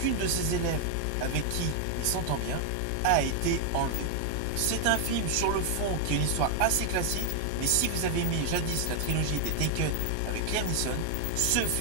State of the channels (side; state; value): both; different; correlation 0.00